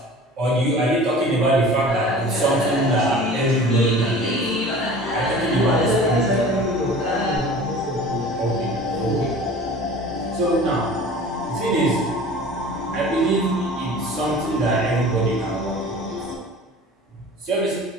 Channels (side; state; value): both; normal; correlation 0.42